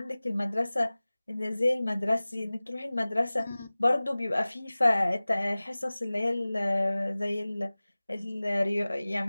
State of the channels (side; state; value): both; inverted; correlation -0.99